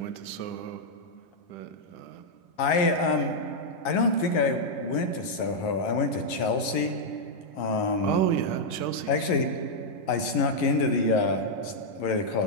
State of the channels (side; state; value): right; late; 11 ms